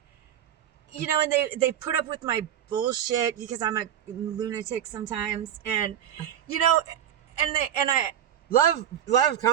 and they put up with my bullshit because I'm a lunatic sometimes. And, and I Love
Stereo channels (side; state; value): left; quieter; 10.3 dB